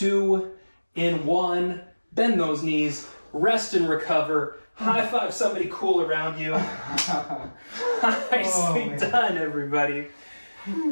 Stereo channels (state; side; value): inverted; both; correlation -1.00